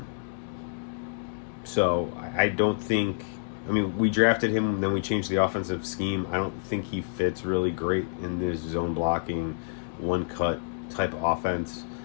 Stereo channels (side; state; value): right; silent; digital silence